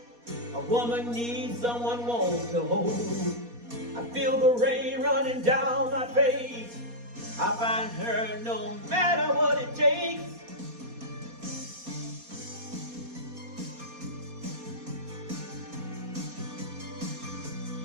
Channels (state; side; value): late; left; 4.2 ms